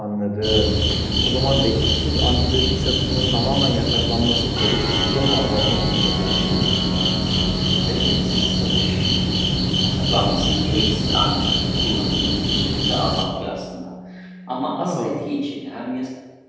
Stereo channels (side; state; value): both; identical; correlation 1.00